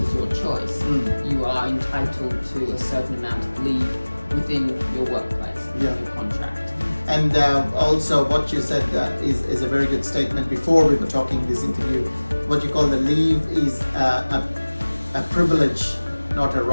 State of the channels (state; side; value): inverted; both; correlation -1.00